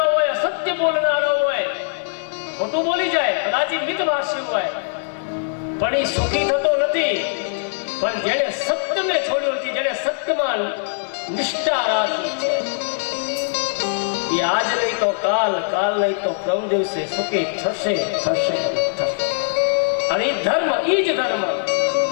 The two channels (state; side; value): silent; right; 65 dB below the other